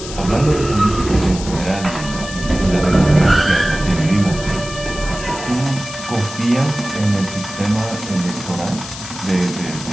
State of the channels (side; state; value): left; noise; hiss, 11 dB below the sound